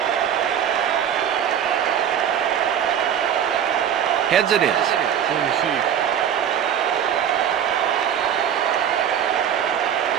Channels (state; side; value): quieter; left; 9.1 dB